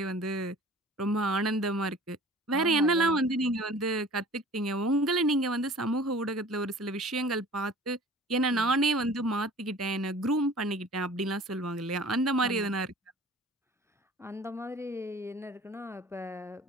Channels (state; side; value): normal; both; correlation 0.46